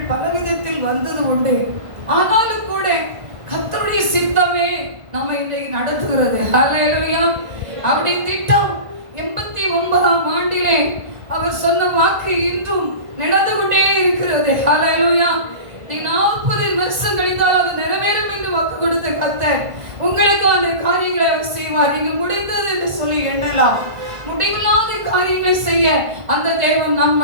பலவிதத்தில் வந்தது உண்டு. ஆனாலும் கூட கர்த்தருடைய சித்தமே நம்மை இன்றைக்கு நடத்துகிறது. அல்லேலூயா. அவருடைய திட்டம் 89ஆம் ஆண்டிலே அவர் சொன்ன வாக்கு இன்றும் நடந்து கொண்டே இருக்கிறது. ஹல்லேலூயா. நீ 40 வருஷம் கழித்தால் அது நிறைவேறும் என்று வாக்கு கொடுத்த கர்த்தர் உங்களுக்கு அந்த காரியங்களை அவர் செய்வார். நீங்க முடிந்தது என்று சொல்லி எண்ணலாம். முடிவில்லாத காரியங்களை செய்ய அந்த தேவன் நம்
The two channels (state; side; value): late; left; 1.5 ms